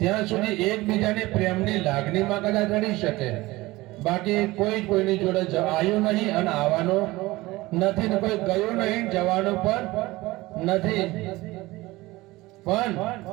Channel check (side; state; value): left; quieter; 19.8 dB